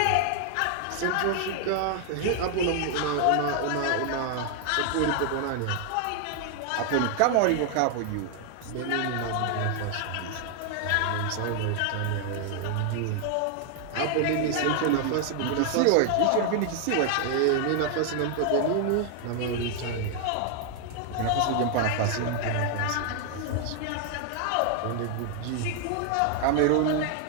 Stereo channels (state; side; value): different; both; correlation 0.00